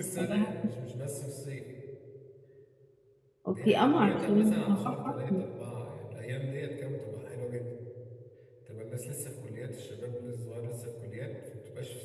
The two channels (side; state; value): both; identical; correlation 1.00